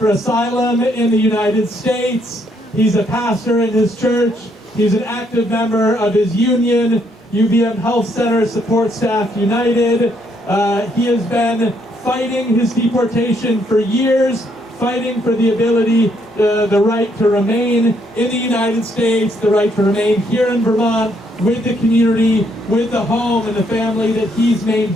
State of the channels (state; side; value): normal; both; correlation 0.72